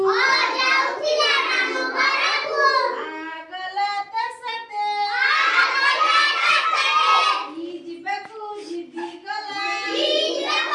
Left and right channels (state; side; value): identical; both; correlation 1.00